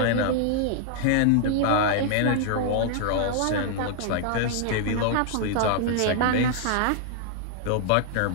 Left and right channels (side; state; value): both; different; correlation -0.01